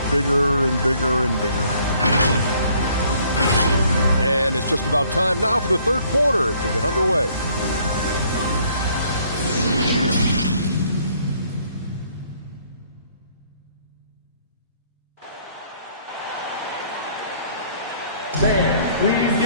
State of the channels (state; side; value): inverted; both; correlation -0.62